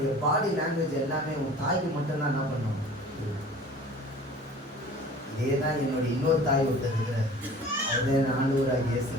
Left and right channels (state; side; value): normal; both; correlation 0.45